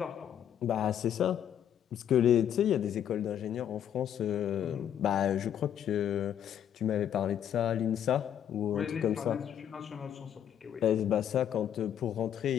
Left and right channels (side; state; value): right; quieter; 9.7 dB